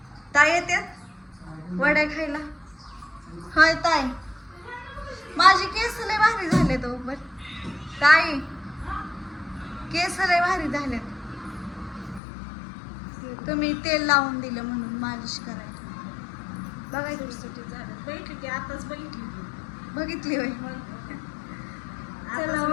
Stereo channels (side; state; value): right; drops out; at 12.2 s